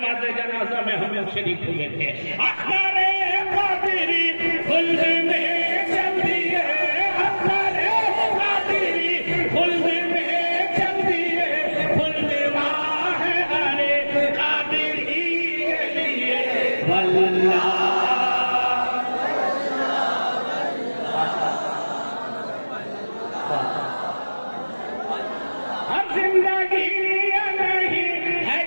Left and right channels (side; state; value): both; inverted; correlation -1.00